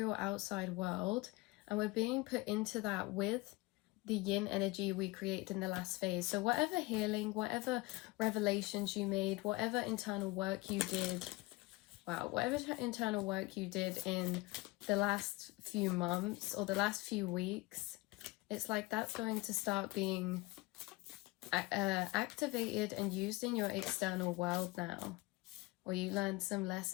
outside world, and we're being put into that with the yin energy we created in the last phase. So whatever healing, whatever revelations you made, whatever internal work you did, whatever internal work you did in the last few months or the last few weeks, it's like that's going to start being activated and used in your external world now. Or you learned some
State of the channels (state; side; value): quieter; right; 22.3 dB